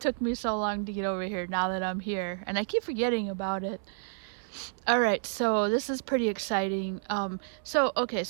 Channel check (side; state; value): left; silent; 58 dB below the other